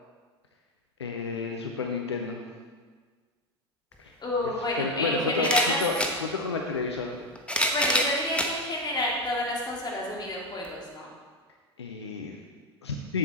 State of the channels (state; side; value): normal; both; correlation 0.09